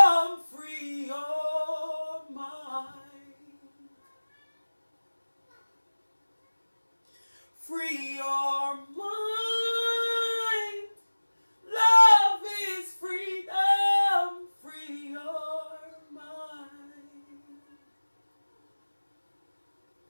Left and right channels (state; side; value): inverted; both; correlation -1.00